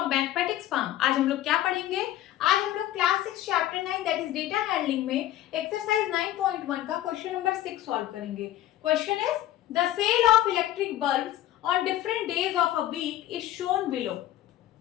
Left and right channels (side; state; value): right; quieter; 13.5 dB